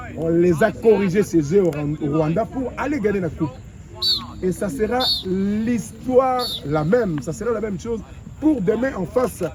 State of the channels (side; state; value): both; identical; correlation 1.00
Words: On les a corrigés ces jeux au Rwanda pour aller gagner la coupe. Et ça sera l'histoire la même, ça sera la même chose pour demain en face